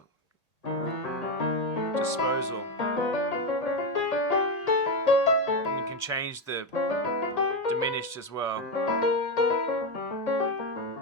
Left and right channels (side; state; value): right; late; 1.8 ms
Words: disposal. And you can change the diminished as well.